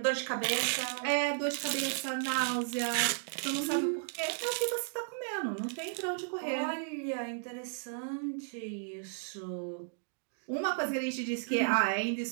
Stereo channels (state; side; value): silent; left; digital silence